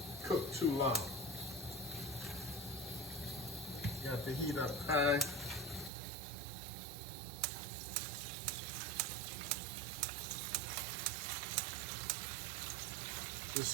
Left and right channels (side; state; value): left; drops out; at 5.9 s